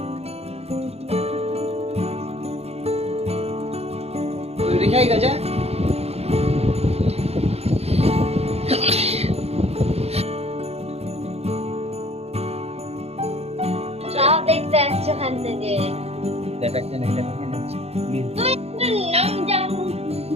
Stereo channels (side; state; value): left; late; 0.30 ms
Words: রেখাই গাজা চাও দেখতে আসছো ওখান থেকে।